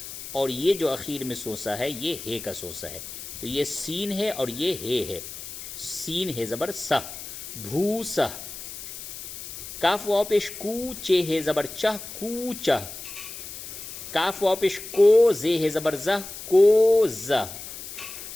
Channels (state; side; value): noise; left; hiss, 11 dB below the sound